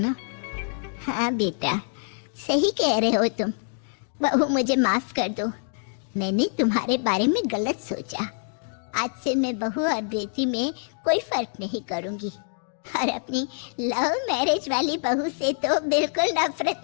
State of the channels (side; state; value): right; silent; 61 dB below the other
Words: ना? हाँ बेटा, सही कह रहे हो तुम। बहू, मुझे माफ कर दो, मैंने तुम्हारे बारे में गलत सोचा। आज से मैं बहू और बेटी में कोई फर्क नहीं करूंगी, और अपनी लव मैरिज वाली बहू से तो बिल्कुल नफरत